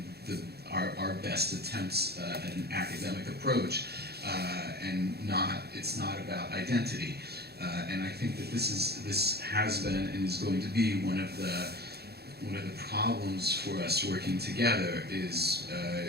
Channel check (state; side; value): late; left; 0.47 ms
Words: our best attempts at an academic approach, and it's not about identity. And I think that this has been and is going to be one of the problems for us working together is